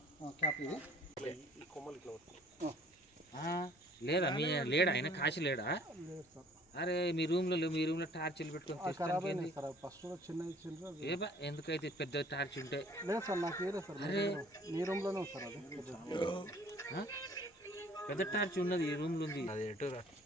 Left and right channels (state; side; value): normal; both; correlation 0.56